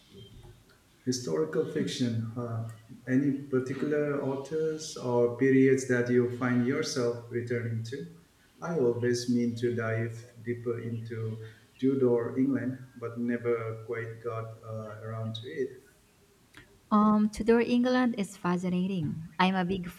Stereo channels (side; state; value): both; identical; correlation 1.00